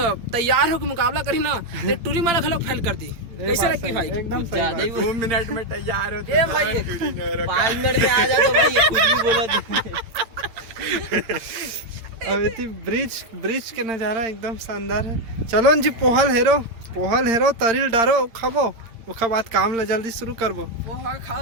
तैयार हो के मुकाबला करी ना तो टूरी माला खलोक फैल कर दी। कैसे लगती भाई? एकदम ज्यादा ही 2 मिनट में तैयार होते। ए भाई 5 मिनट में आ जा तो भाई ये कुछ भी बोला। अब इतनी ब्रिज के नज़ारा एकदम शानदार है। चलो जी पोहल हेरो तरील डारो खाबो, उसके बाद काम ला जल्दी शुरू करबो। पोहा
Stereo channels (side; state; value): left; late; 8.8 ms